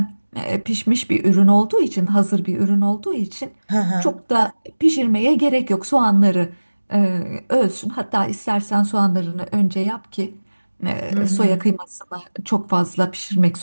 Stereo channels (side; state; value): both; inverted; correlation -1.00